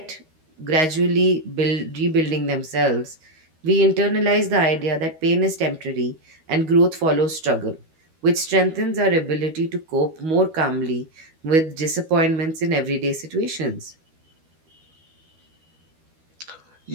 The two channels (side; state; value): left; late; 13 ms